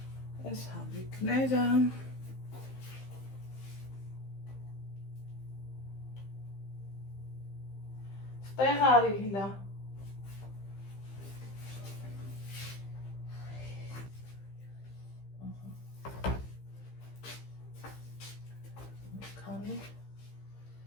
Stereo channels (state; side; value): late; right; 15 ms